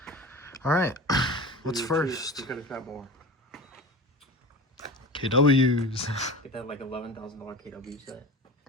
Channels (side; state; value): both; normal; correlation 0.32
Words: All right, what's first? You could have got more. KWs. Get that like $11,000 KW set.